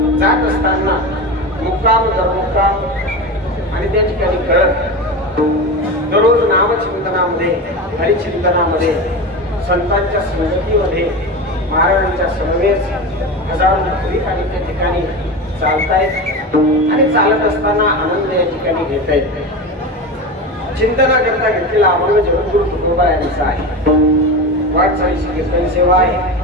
जात असताना मुक्काम दरमुक्काम आणि त्या ठिकाणी करत दररोज नामचिंतनामध्ये हरिचिंतनामध्ये संतांच्या संगतीमध्ये महाराजांच्या समवेत हजारो नागरिक आणि त्या ठिकाणी चालतायत आणि चालत असताना आनंद या ठिकाणी घेता येत. चिंतनाकरता घेतलेला अभंग जगद्गुरु तुकोबा यांचा आहे. वाटचालीची कीर्तन सेवा आहे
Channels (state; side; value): normal; both; correlation 0.24